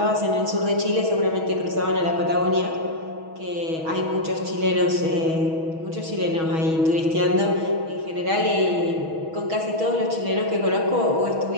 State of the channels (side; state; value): left; late; 6.2 ms